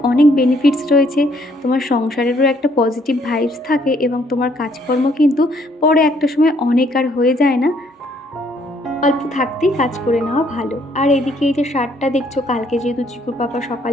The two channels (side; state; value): both; normal; correlation 0.66